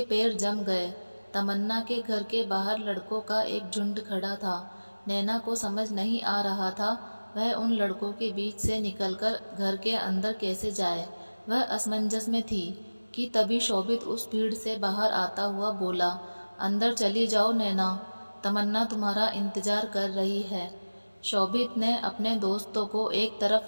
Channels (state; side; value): inverted; both; correlation -1.00